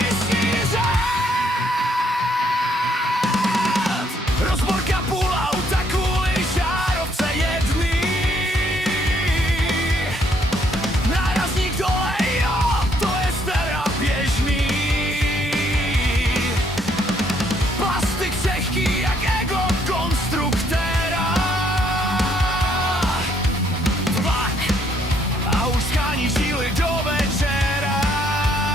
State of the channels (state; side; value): normal; both; correlation 0.69